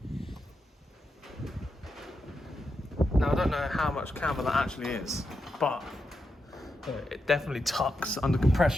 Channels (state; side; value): normal; both; correlation 0.86